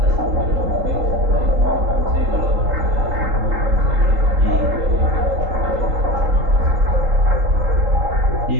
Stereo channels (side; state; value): left; late; 3.8 ms